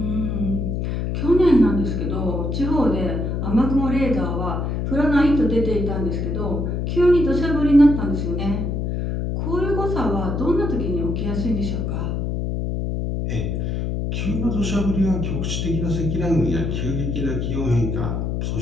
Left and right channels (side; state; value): left; noise; hum, 1 dB below the sound